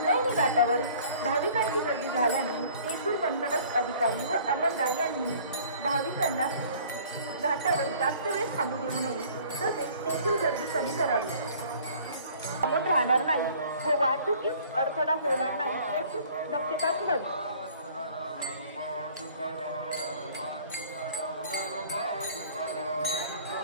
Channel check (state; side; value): inverted; both; correlation -0.52